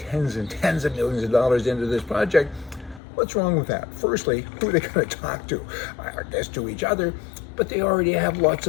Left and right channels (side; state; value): right; drops out; at 3.0 s